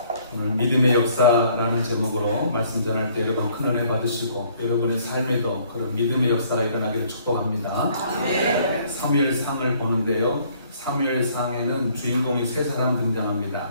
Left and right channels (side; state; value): both; inverted; correlation -0.61